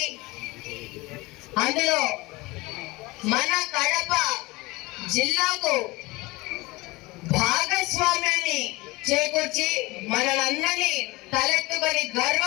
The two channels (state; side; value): quieter; right; 22.2 dB